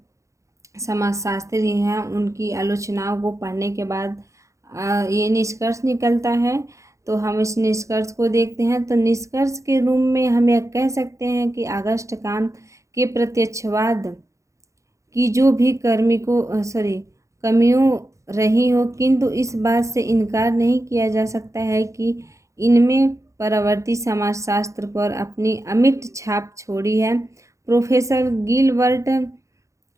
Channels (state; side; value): late; left; 0.15 ms